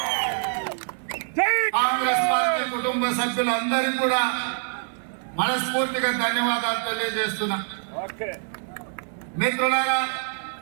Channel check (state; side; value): silent; left; 62 dB below the other